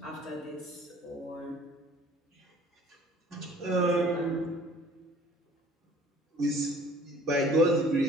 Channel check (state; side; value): normal; both; correlation 0.51